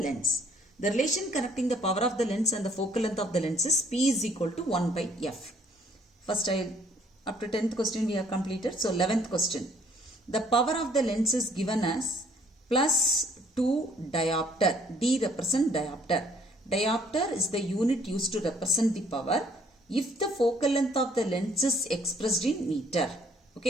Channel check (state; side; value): normal; both; correlation 0.62